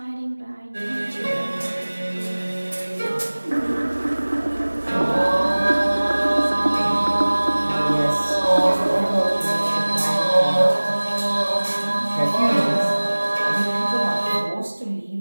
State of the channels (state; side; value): inverted; both; correlation -1.00